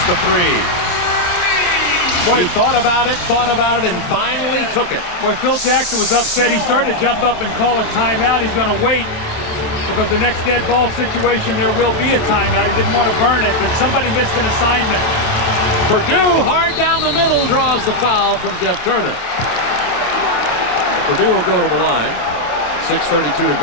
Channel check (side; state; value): right; late; 27 ms